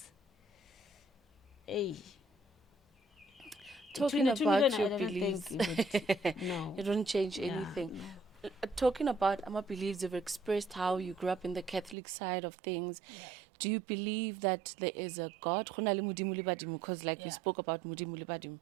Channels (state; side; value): drops out; left; at 12.0 s